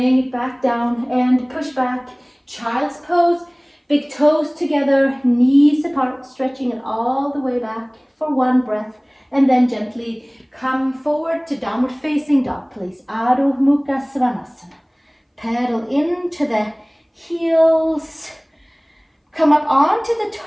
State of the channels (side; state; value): both; identical; correlation 1.00